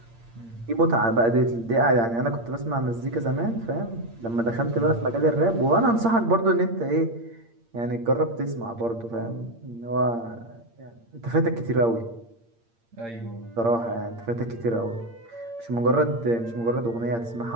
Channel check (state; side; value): late; left; 8.7 ms